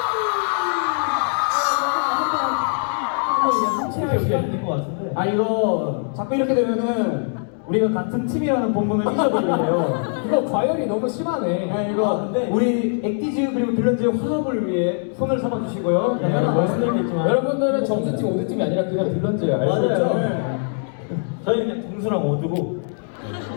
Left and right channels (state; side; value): silent; right; 64 dB below the other